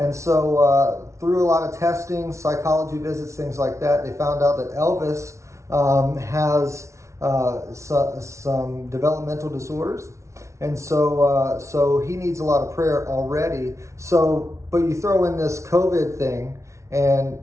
so through a lot of testing, psychology visits, things like that, they found out that Elvis has some developmental disorders. And so he needs a lot of prayer already. But you throw in this COVID thing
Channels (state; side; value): late; left; 0.14 ms